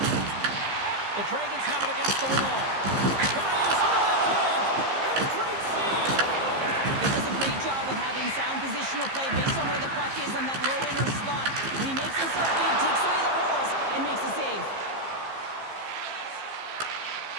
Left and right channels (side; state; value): left; late; 15 ms